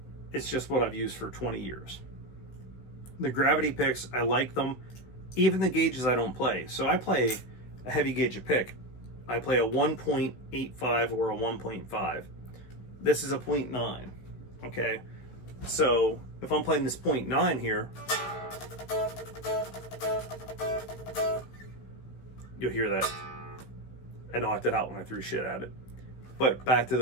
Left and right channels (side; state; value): right; late; 16 ms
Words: It's just what I've used for 20 years. The Gravity picks, I like them. Even the gauges I don't play. So I play a heavy gauge of pick. I play a 1.85 or a 1.5. This is a 0.9, okay? So if I'm playing this 0.9 here, you'll hear that. I knocked it out when I threw shit at it. But back to